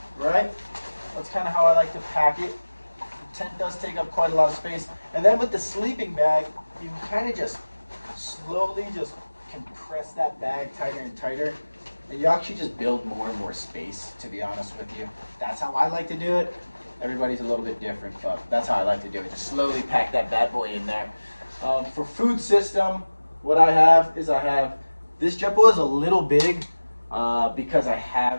right? That's kind of how I like to pack it. The tent does take up quite a lot of space. And then with the sleeping bag, you can kind of just slowly just compress that bag tighter and tighter. And you actually just build more and more space, to be honest with you. That's how I like to do it. Everybody's a little bit different, but that's how I like to do it. Just slowly pack that bad boy in there. For food system, what I have is this JetBoil is a little big because I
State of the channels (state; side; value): inverted; both; correlation -1.00